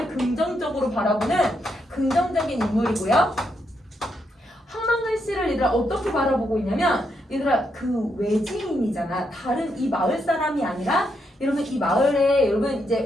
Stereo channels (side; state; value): both; normal; correlation 0.80